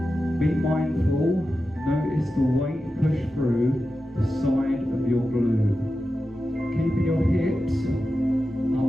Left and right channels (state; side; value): normal; both; correlation 0.92